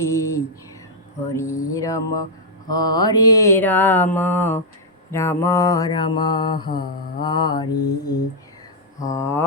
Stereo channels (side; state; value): both; normal; correlation -0.05